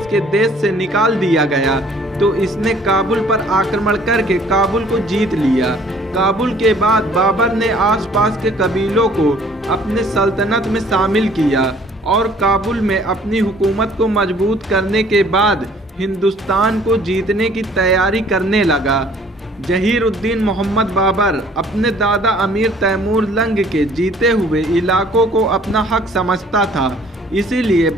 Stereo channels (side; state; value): both; normal; correlation 0.56